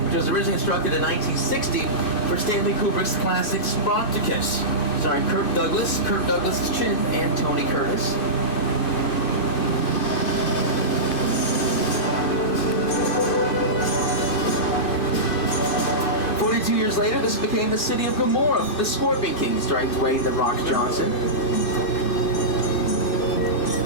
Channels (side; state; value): right; late; 2.5 ms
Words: which was originally constructed in 1960 for Stanley Kubrick's classic Spartacus, starring Kirk Douglas's chin, and Tony Curtis. Years later, this became the city of Gomorrah, the Scorpion King, starring Dwayne "The Rock" Johnson.